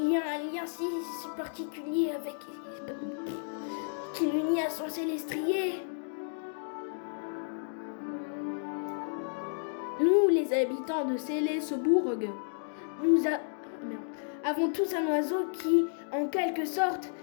y a un lien si particulier avec... qui l'unit à son Célestrier. Nous, les habitants de Célesbourg, avons tous un oiseau qui, en quelque sorte,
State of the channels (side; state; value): right; silent; digital silence